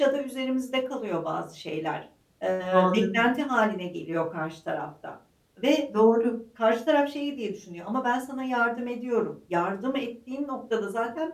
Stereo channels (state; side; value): identical; both; correlation 1.00